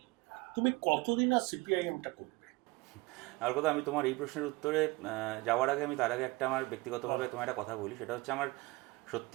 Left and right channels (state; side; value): quieter; left; 22.5 dB